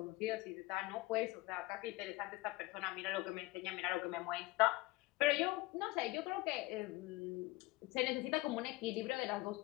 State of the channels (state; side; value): quieter; right; 20.6 dB